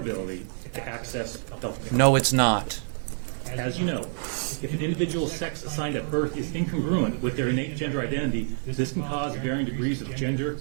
to access health care. No, it's not. As you know, if an individual's sex assigned at birth is incongruent with their innate gender identity, this can cause varying degrees of gender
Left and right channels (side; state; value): left; silent; 60 dB below the other